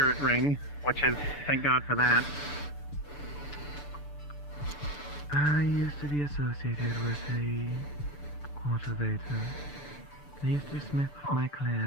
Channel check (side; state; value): right; late; 6.9 ms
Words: ring, which is, thank God for that. I used to be associated with a cultivator. They used to smith with my